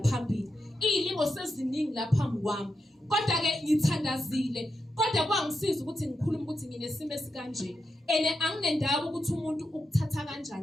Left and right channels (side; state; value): both; normal; correlation 0.86